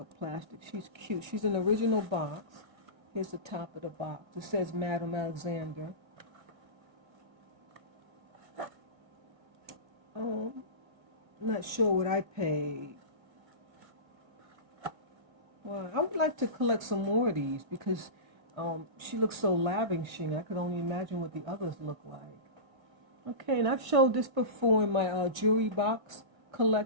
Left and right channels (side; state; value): left; late; 2.0 ms